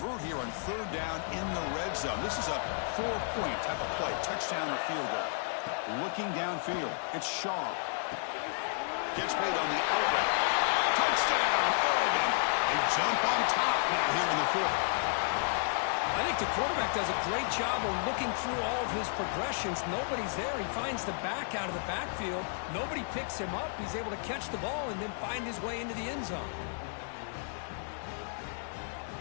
here on 3rd down in the red zone. This is a 4-point type of play, touchdown or field goal. Looking downfield, it's Shaw. Gets made on the out route. Touchdown, Oregon. A jump on top now here in the fourth. I think the quarterback does a great job of looking through all of his progressions. Nobody's there. He finds the back out of the backfield. Nobody picks him up. He's able to catch the ball and then find his way into the end zone.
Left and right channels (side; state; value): right; silent; digital silence